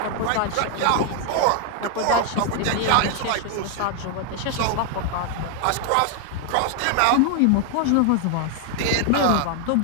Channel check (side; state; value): both; different; correlation 0.00